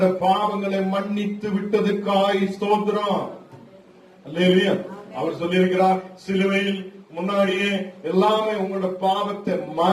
பாவங்களை மன்னித்து விட்டதுக்காய் ஸ்தோத்திரம். அல்லேலூயா. அவர் சொல்லியிருக்கிறார், சிலுவையில் முன்னாடியே எல்லாமே உங்களோட பாவத்தை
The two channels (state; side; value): identical; both; correlation 1.00